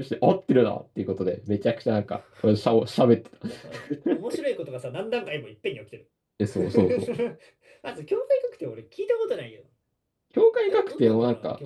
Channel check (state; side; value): identical; both; correlation 1.00